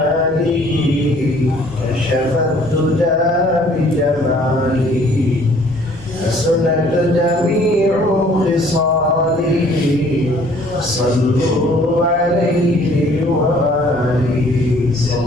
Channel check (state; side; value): noise; left; hum, 22 dB below the sound